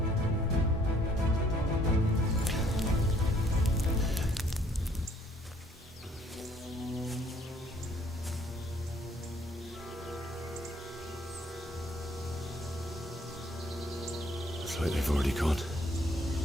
Looks like they've already gone.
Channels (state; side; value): normal; both; correlation 0.63